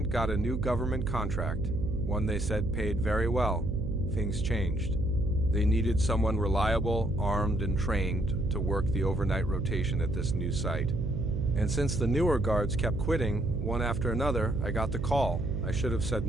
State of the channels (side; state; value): right; noise; hum, 4 dB below the sound